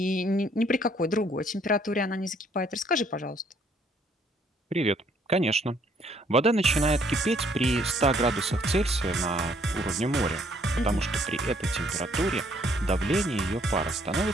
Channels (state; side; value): normal; both; correlation 0.65